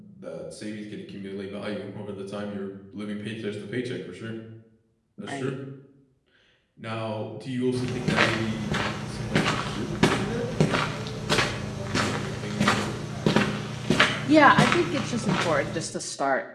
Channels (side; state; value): both; identical; correlation 1.00